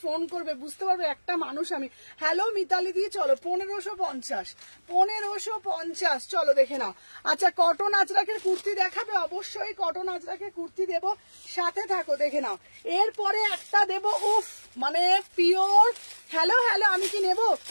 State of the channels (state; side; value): inverted; both; correlation -1.00